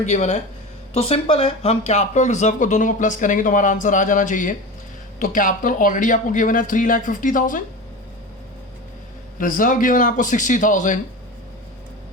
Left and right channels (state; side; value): normal; both; correlation 0.28